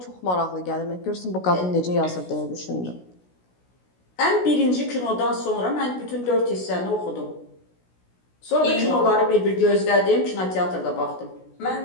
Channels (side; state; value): right; late; 16 ms